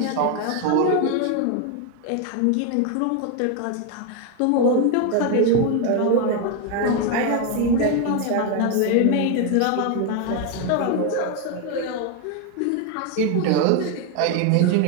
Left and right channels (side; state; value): both; different; correlation 0.01